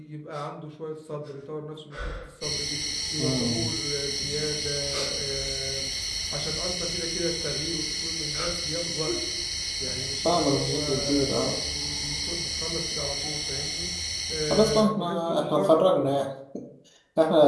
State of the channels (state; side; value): identical; both; correlation 1.00